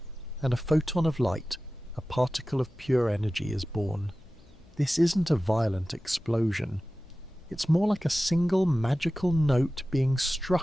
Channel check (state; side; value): noise; left; hum, 28 dB below the sound